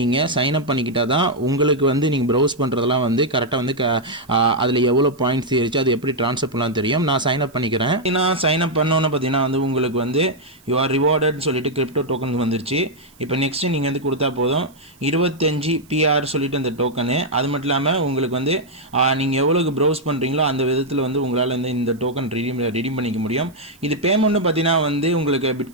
தான் உங்களுக்கு வந்து நீங்கள் ப்ரௌஸ் பண்ணுறதெல்லாம் வந்து கரெக்டாக வந்து அதில் எவ்வளோ பாயிண்ட்ஸ் ஏறிச்சு அது எப்படி ட்ரான்ஸ்ஃபர் பண்ணலாம் தெரியும். நான் சைன் அப் பண்ணிக்கிறேன். நான் சைன் அப் பண்ணோன்னு பார்த்தீங்கன்னா வந்து உங்களுக்கு வந்து யூ ஆர் ரிவார்டட்னு சொல்லிட்டு கிரிப்டோ டோக்கன் வந்துருச்சு. இப்போ நெக்ஸ்ட்டு நீங்கள் வந்து கொடுத்தா போதும் 25 PR சொல்லிட்டு அந்த டோக்கனு. அது மட்டும் இல்லாமல் உங்களுக்கு வந்து நீங்கள் எவ்வளோக்கு ப்ரௌஸ் பண்ணுறீங்களோ அந்த விதத்தில் வந்து உங்களால் வந்து இந்த டோக்கன் ரெடீம் பண்ணிக்க முடியும். இது பேமெண்ட்னு பார்த்தீங்கன்னா வந்து உங்களுக்கு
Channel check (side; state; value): right; noise; hiss, 29 dB below the sound